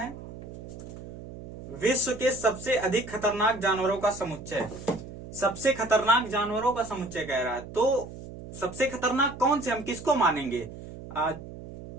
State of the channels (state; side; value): noise; right; hum, 12 dB below the sound